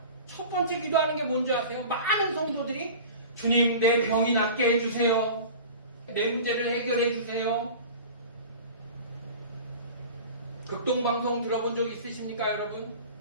첫 번째 기도하는 게 뭔지 아세요? 많은 성도들이 주님 내 병이 낫게 해주세요. 내 문제를 해결해 주세요. 극동방송 들어본 적 있으십니까 여러분?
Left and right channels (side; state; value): both; inverted; correlation -0.38